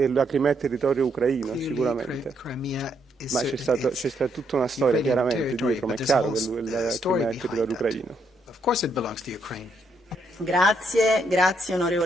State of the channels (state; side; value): normal; both; correlation 0.75